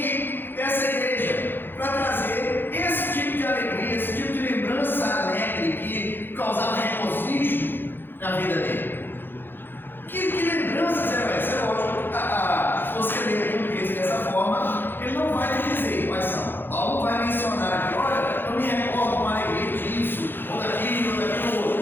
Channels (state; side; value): late; right; 0.099 ms